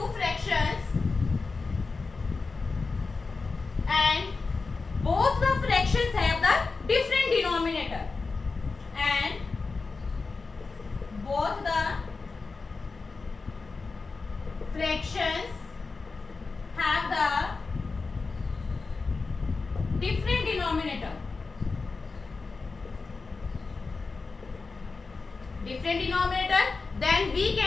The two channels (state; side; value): quieter; right; 4.2 dB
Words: fractions and both the fractions have the different denominator and both the fractions have the different denominator. Then we